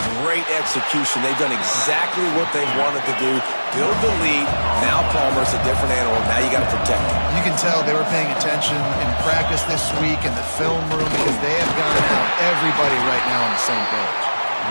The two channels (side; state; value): both; inverted; correlation -1.00